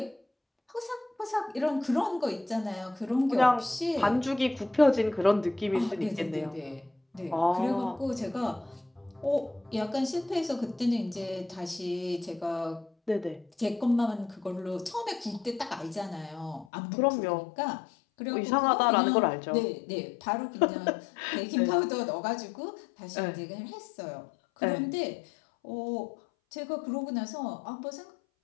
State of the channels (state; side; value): drops out; right; at 16.7 s